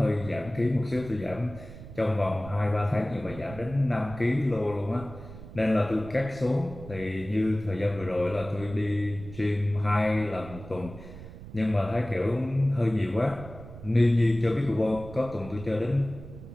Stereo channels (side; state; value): right; noise; rumble, 14 dB below the sound